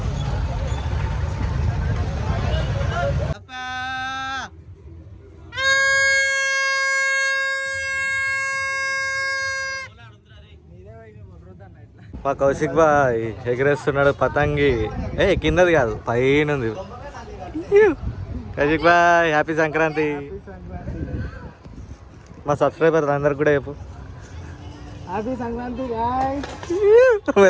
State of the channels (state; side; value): identical; both; correlation 1.00